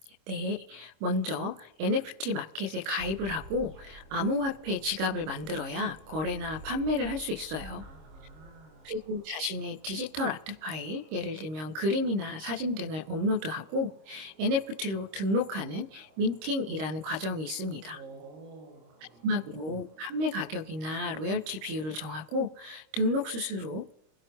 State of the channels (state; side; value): late; left; 26 ms